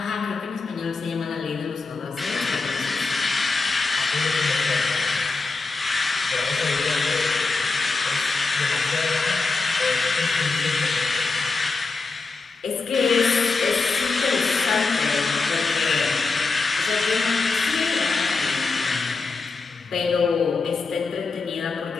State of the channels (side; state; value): right; quieter; 4.1 dB